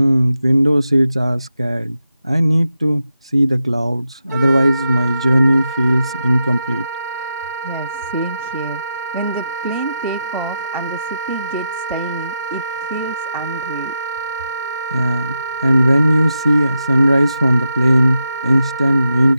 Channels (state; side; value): inverted; both; correlation -0.86